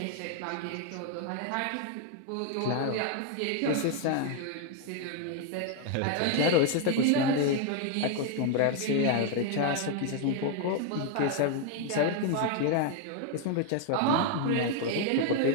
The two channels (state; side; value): different; both; correlation 0.01